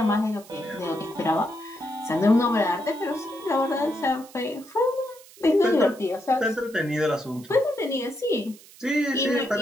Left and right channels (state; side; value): noise; right; hiss, 22 dB below the sound